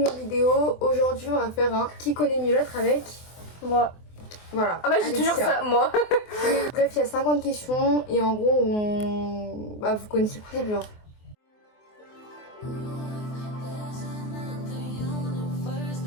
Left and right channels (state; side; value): late; right; 24 ms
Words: nouvelle vidéo. Aujourd'hui on va faire un qui connaît mieux l'autre avec moi. Voilà. Ah bah j'ai toujours ça, moi. Bref, il y a 50 questions et en gros vous connaissez le principe genre.